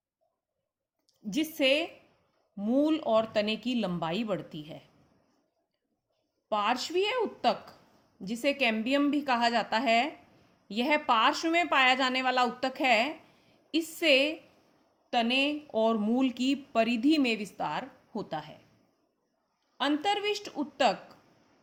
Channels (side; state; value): both; identical; correlation 1.00